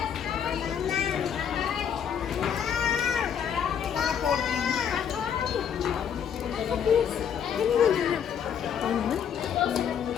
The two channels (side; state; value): right; quieter; 8.2 dB